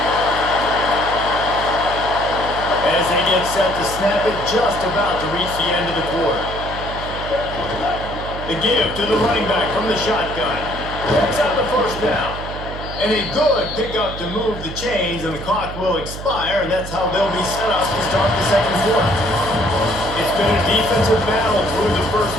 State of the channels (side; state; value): right; noise; hum, 10 dB below the sound